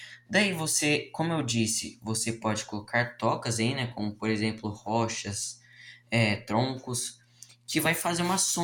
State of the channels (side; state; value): both; identical; correlation 1.00